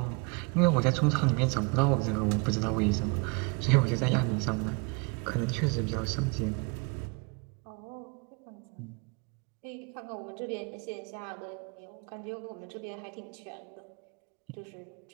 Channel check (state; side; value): quieter; left; 30.8 dB